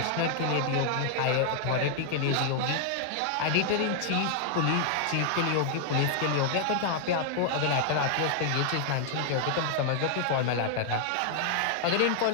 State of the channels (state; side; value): different; both; correlation 0.00